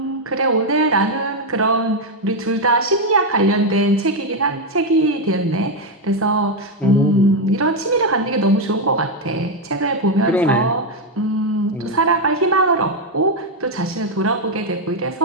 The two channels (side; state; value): both; normal; correlation 0.04